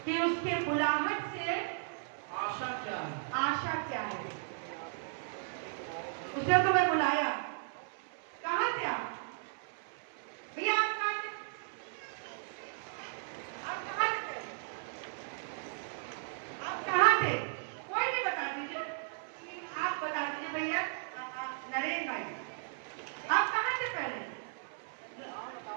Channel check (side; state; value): left; silent; 54 dB below the other